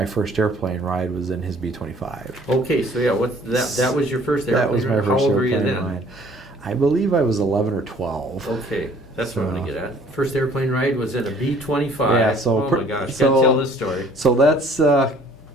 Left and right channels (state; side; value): normal; both; correlation 0.56